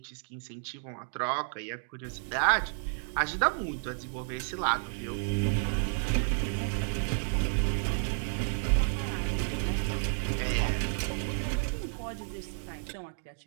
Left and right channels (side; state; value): left; silent; digital silence